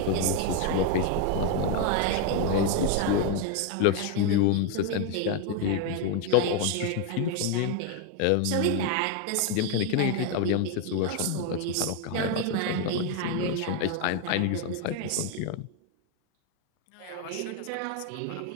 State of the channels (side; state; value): both; different; correlation 0.01